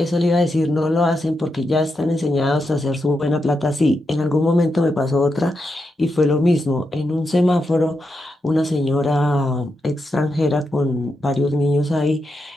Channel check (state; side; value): normal; both; correlation 0.85